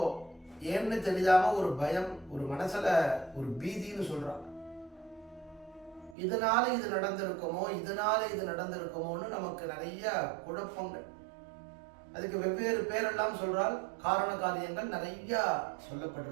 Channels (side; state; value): left; drops out; at 6.2 s